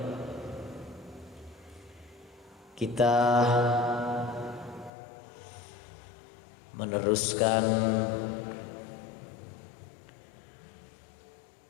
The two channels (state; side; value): drops out; right; at 4.9 s